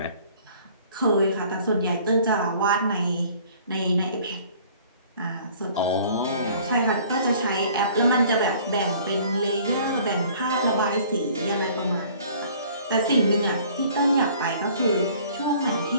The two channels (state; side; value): inverted; both; correlation -0.53